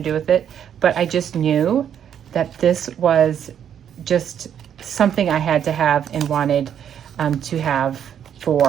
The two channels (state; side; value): quieter; left; 9.1 dB